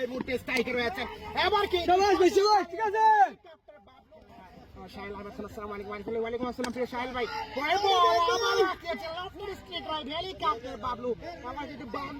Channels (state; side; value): identical; both; correlation 1.00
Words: এই মুহূর্তে স্ট্রাইকে রয়েছেন। এবার কি ঠিক আছে শাহিল আহমেদ, আসসালামু আলাইকুম। ওয়ালাইকুম আসসালাম প্রিয় শাহিল ভাই। হেলিকপ্টার বাবলু আমার কিন্তু